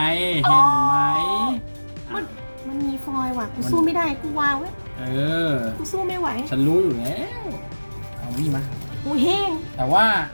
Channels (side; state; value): both; inverted; correlation -1.00